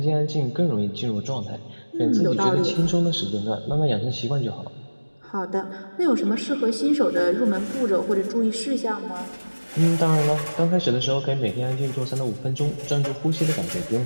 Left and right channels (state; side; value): inverted; both; correlation -1.00